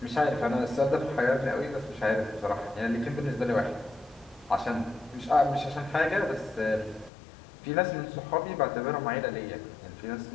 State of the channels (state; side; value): drops out; right; at 7.1 s